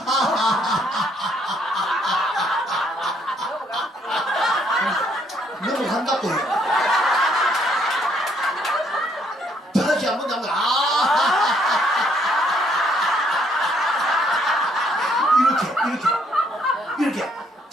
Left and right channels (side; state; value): both; normal; correlation 0.68